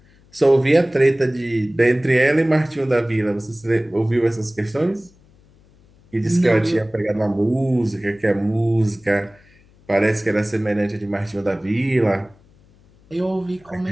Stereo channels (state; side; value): noise; left; hum, 30 dB below the sound